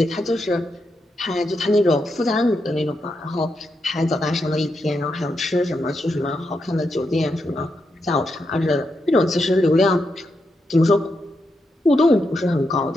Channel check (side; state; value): both; normal; correlation 0.84